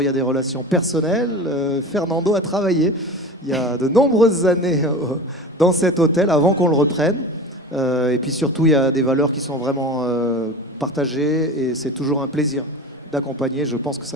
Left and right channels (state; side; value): normal; both; correlation 0.32